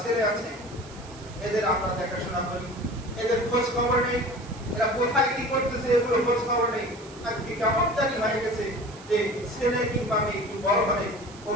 ছেলে আছে, এদের আমরা দেখাশোনা করি, এদের খোঁজ খবর নেই, এরা কোথায় কি করতেছে এগুলো খোঁজ খবর নেই। আজকে কেমন জানি হয়ে গেছে যে ছেলে কিংবা মেয়ে একটু বড় হলে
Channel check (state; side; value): noise; right; hiss, 20 dB below the sound